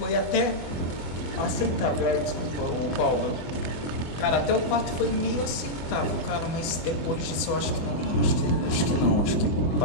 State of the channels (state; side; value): late; right; 24 ms